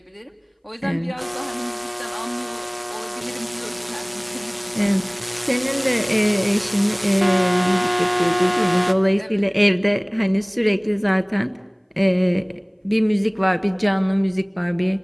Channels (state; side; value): identical; both; correlation 1.00